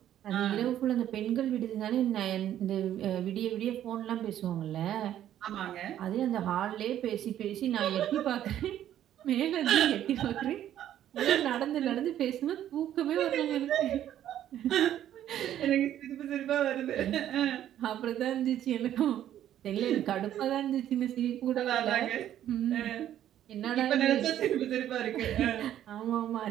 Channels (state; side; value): quieter; left; 11.4 dB